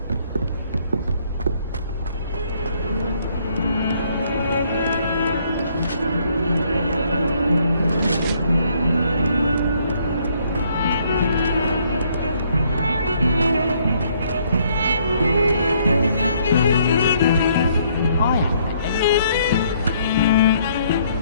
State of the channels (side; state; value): both; inverted; correlation -0.66